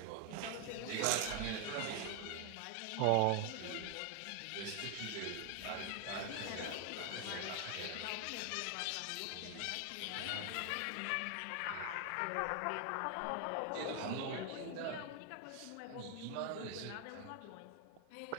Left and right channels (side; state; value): both; different; correlation 0.01